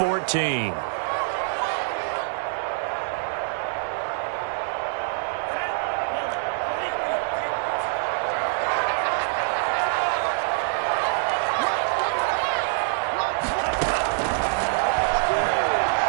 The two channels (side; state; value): left; silent; digital silence